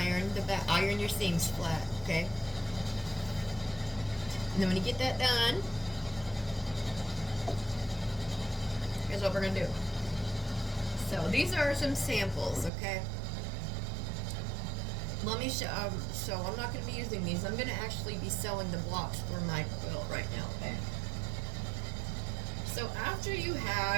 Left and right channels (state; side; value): drops out; left; at 12.7 s